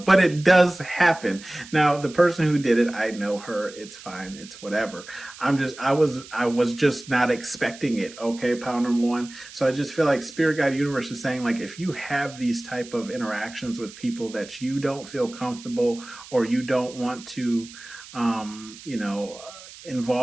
it does happen. Now, the person who did it, I know her. It's fine. It's whatever. I was just not expecting it. Okay, pile number one. So I just feel like Spirit Guide Universe is saying like, if you have these type of interactions with people that you don't feel comfortable or you don't want to,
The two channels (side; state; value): right; noise; hiss, 17 dB below the sound